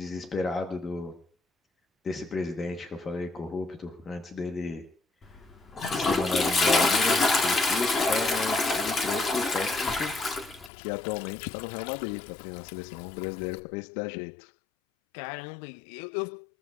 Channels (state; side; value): drops out; right; at 10.7 s